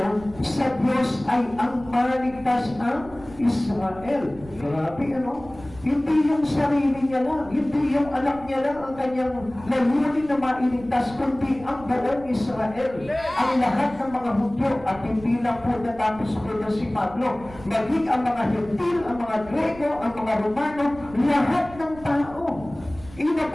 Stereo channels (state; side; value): noise; right; rumble, 19 dB below the sound